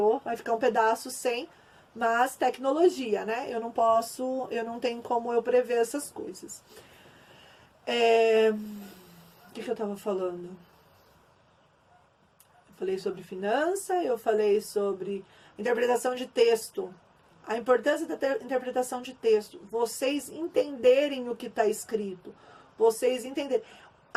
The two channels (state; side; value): identical; both; correlation 1.00